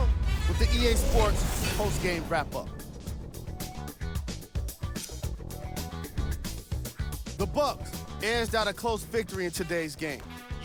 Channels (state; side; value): identical; both; correlation 1.00